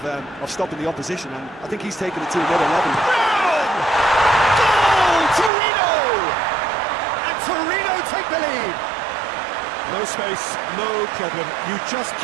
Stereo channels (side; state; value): left; drops out; at 5.5 s